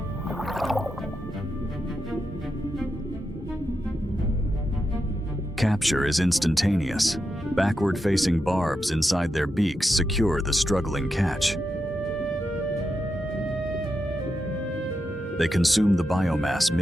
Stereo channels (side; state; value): both; normal; correlation 0.86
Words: Capture is instantaneous. Backward-facing barbs inside their beaks secure the struggling catch. They consume the biomass